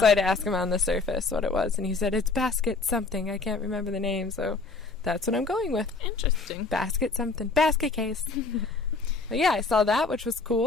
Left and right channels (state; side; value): quieter; right; 4.0 dB